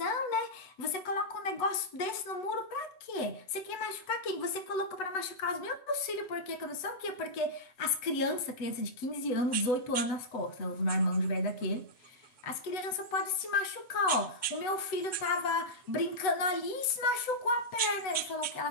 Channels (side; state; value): right; late; 7.9 ms